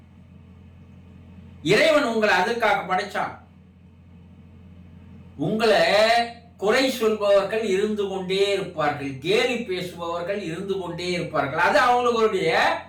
இறைவன் உங்களை அதுக்காக படைச்சான். உங்களை குறை சொல்பவர்கள் இருந்து கொண்டே இருப்பார்கள், கேலி பேசுபவர்கள் இருந்து கொண்டே இருப்பார்கள். அது அவங்களுடைய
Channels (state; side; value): identical; both; correlation 1.00